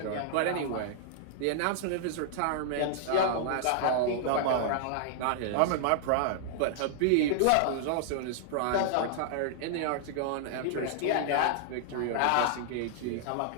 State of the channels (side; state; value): both; different; correlation -0.01